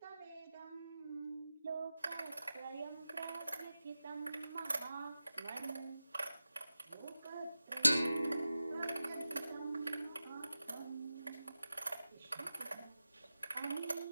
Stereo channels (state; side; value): inverted; both; correlation -0.94